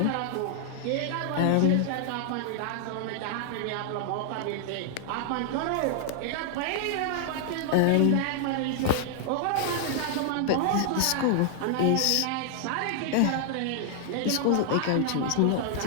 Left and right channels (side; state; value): both; different; correlation 0.00